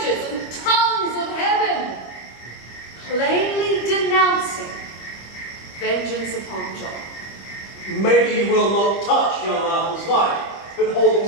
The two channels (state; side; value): late; right; 25 ms